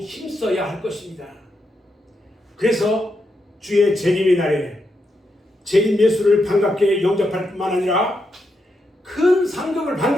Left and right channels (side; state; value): both; normal; correlation 0.83